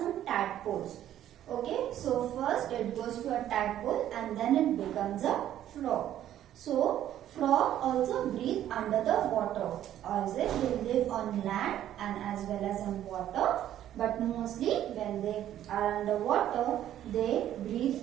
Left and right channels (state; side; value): quieter; left; 11.7 dB